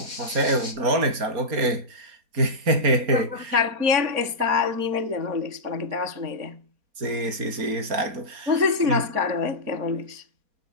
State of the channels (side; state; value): left; late; 4.2 ms